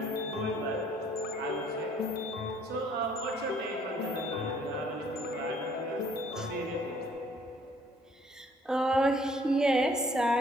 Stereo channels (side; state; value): both; normal; correlation 0.60